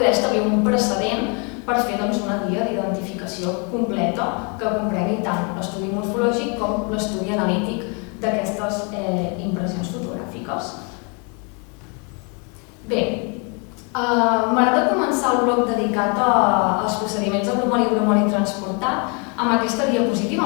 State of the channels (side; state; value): right; quieter; 34.9 dB